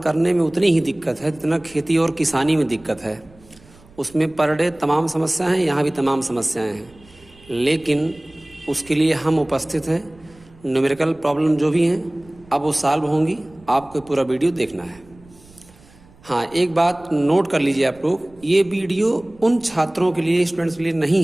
में उतनी ही दिक्कत है जितना खेती और किसानी में दिक्कत है। उसमें पर डे तमाम समस्याएं हैं, यहाँ भी तमाम समस्याएं हैं, लेकिन उसके लिए हम उपस्थित हैं। न्यूमेरिकल प्रॉब्लम जो भी हैं अब वो सॉल्व होंगी, आपको पूरा वीडियो देखना है। हाँ, एक बात नोट कर लीजिए आप लोग, ये वीडियो उन छात्रों के लिए, स्टूडेंट्स के लिए नहीं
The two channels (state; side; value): noise; right; rumble, 26 dB below the sound